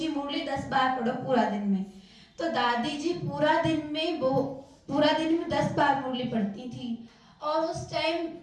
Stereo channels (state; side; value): identical; both; correlation 1.00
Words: मुरली 10 बार पढ़ो पूरा दिन में। तो दादी जी पूरा दिन में 10 बार मुरली पढ़ती थी, और उस टाइम